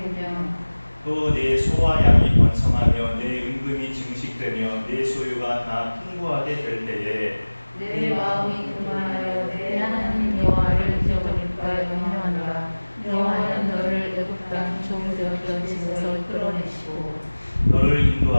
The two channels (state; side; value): inverted; both; correlation -1.00